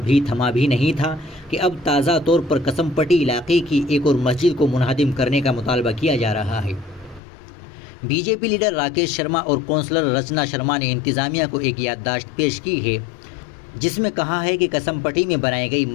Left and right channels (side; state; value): right; drops out; at 7.2 s